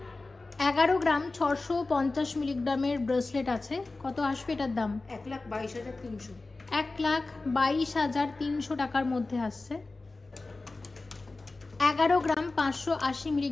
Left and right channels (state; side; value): quieter; right; 3.4 dB